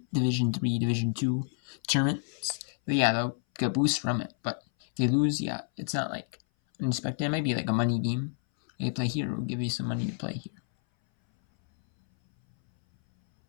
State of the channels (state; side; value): silent; right; 58 dB below the other